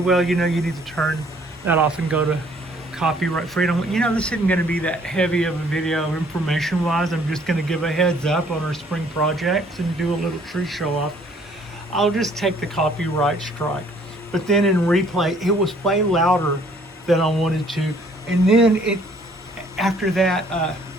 you know, you need to turn that off and go to copyright freedom. You know, this isn't going to be that heavy of a video information wise. I'm just going to give a heads up on our spring projects and do a little tree show off. I'll just take the copyright strike. But then in replay, it was way louder than I wanted to. And then after that, I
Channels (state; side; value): normal; both; correlation 0.60